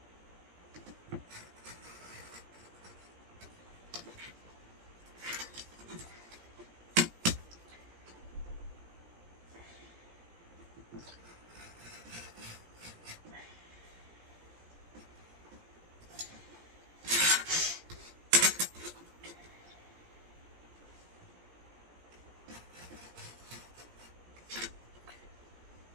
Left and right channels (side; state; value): left; late; 17 ms